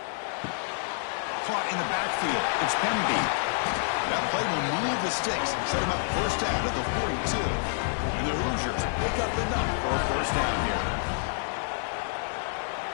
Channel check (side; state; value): right; silent; digital silence